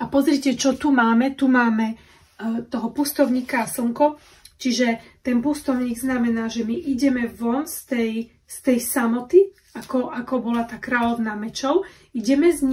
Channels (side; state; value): both; identical; correlation 1.00